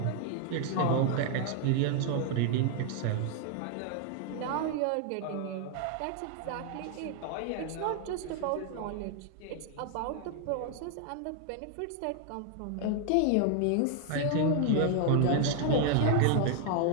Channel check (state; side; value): different; both; correlation 0.00